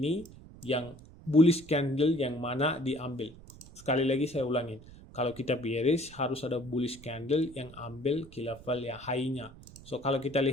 yang bullish candle yang mana diambil. Sekali lagi saya ulangin. Kalau kita bearish, harus ada bullish candle yang ambil key level yang high-nya. So, kalau kita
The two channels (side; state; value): right; noise; rumble, 19 dB below the sound